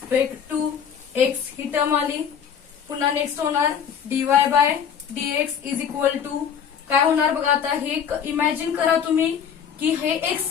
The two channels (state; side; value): quieter; right; 7.7 dB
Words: to x, ही टर्म आली. पुन्हा नेक्स्ट होणार dy by dx is equal to काय होणार बघा. आता हे इमॅजिन करा तुम्ही की हे एक्स